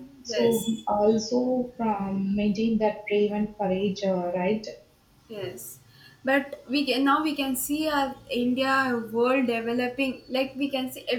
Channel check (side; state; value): both; identical; correlation 1.00